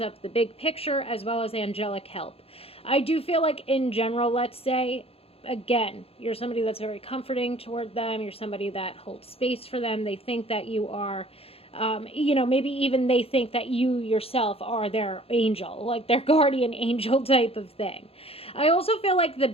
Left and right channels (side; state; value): right; late; 0.28 ms